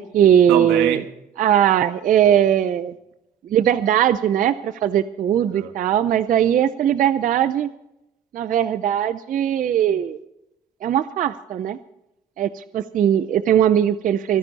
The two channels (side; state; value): left; quieter; 9.7 dB